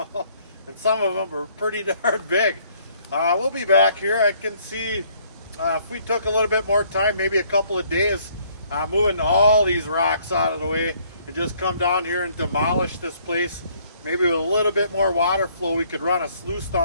and some of them are pretty darn big. We'll be back here. I can see if we took a little bit more time, maybe a couple of days, moving all these rocks out of the way, and just come down here and demolish this place. Maybe with a little bit more water flow, we could run a sluice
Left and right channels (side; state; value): both; inverted; correlation -0.63